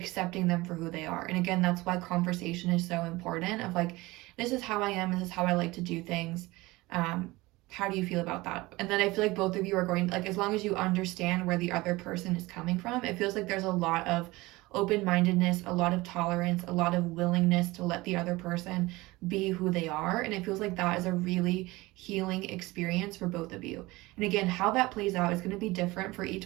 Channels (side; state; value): left; quieter; 20.9 dB